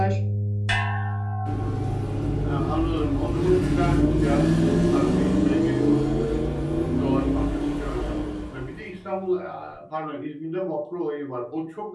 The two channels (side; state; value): both; identical; correlation 1.00